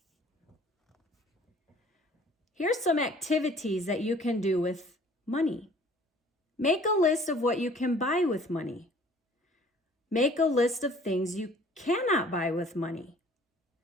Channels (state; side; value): normal; both; correlation 0.53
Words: Here's some activities that you can do with money. Make a list of what you can buy with money. Make a list of things you cannot buy with money.